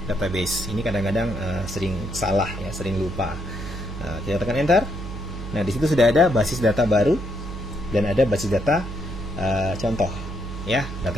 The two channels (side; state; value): right; noise; hum, 8 dB below the sound